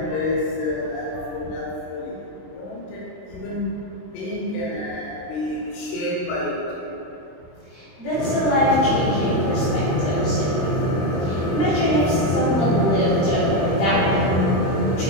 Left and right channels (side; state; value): right; late; 23 ms